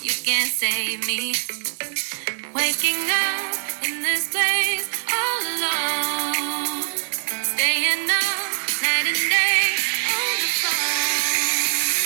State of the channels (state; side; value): silent; left; digital silence